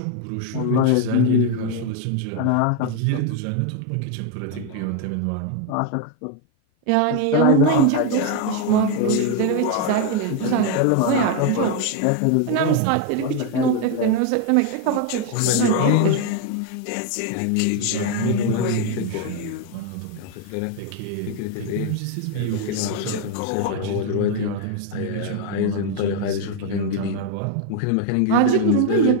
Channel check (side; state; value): both; different; correlation 0.01